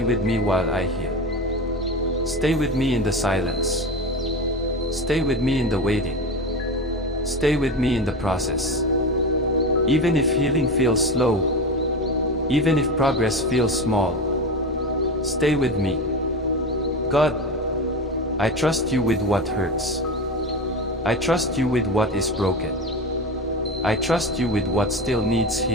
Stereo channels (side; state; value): both; normal; correlation 0.24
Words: with me while I heal. Stay with me in the silence. Stay with me in the waiting. Stay with me in the process. Even if healing feels slow, even if progress feels small, stay with me. God, I trust you with what hurts. I trust you with what is broken. I trust you with what still needs